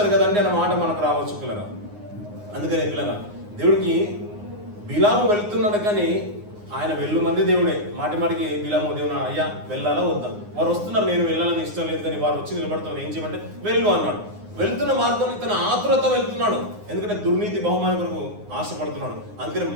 కదండి అన్న మాట మనకు రావచ్చు పిల్లరా. అందుకనే పిల్లరా, దేవుడికి బిలాము వెళ్తున్నాడు కానీ ఆయన వెళ్ళు మంది దేవుడే. మాటి మాటికి బిలాము దేవుడు అయ్యా వెళ్ళాలా వద్దా, వారు వస్తున్నారు నేను వెళ్ళాలని ఇష్టం లేదు కానీ వారు వచ్చి నిలబడుతున్నారు, ఏం చేయమంటే వెళ్ళు అన్నాడు. వెళ్తున్న మార్గంలో ఇతను ఆతురత వెళ్తున్నాడు, ఎందుకంటే దుర్నీతి బహుమానం కొరకు ఆశపడుతున్నాడు. అందుకని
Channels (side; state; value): left; late; 9.7 ms